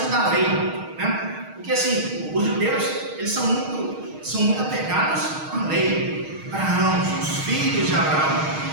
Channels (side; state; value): left; late; 6.4 ms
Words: da lei, né? Porque assim, os judeus, eles são muito apegados à lei. Abraão, os filhos de Abraão.